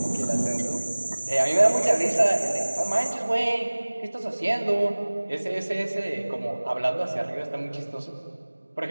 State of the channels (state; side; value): inverted; both; correlation -1.00